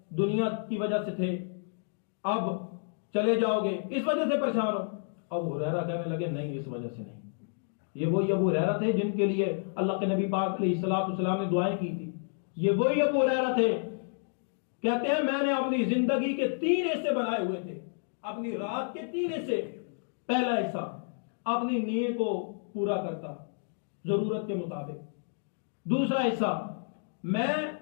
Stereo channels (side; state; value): right; silent; digital silence